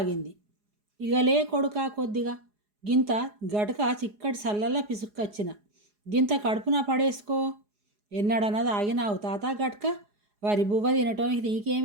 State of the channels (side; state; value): left; late; 4.8 ms